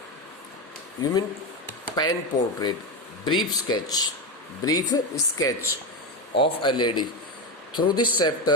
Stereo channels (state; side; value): normal; both; correlation 0.13